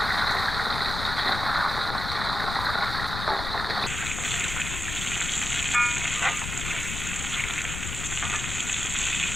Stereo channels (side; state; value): left; noise; rumble, 6 dB below the sound